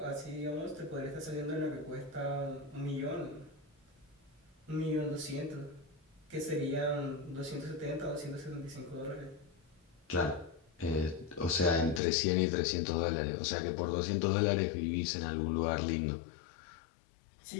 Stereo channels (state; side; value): drops out; right; at 12.0 s